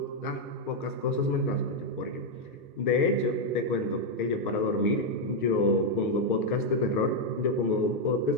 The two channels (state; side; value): normal; both; correlation 0.01